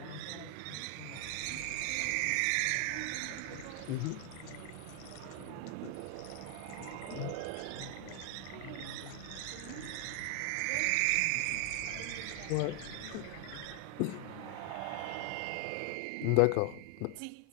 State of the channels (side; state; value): both; different; correlation 0.00